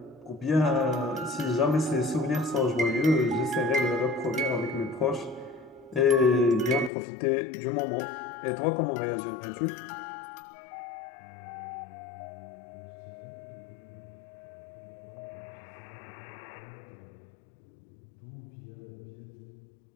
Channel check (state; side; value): drops out; right; at 6.9 s